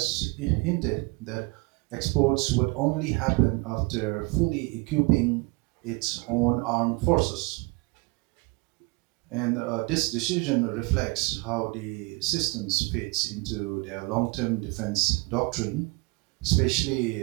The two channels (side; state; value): left; quieter; 27.2 dB